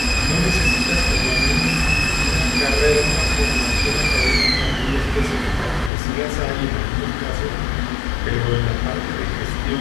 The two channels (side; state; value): right; drops out; at 5.9 s